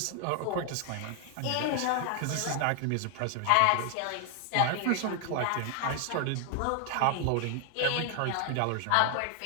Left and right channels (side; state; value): both; different; correlation 0.00